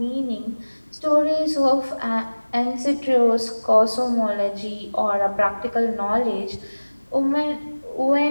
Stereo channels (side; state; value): both; inverted; correlation -1.00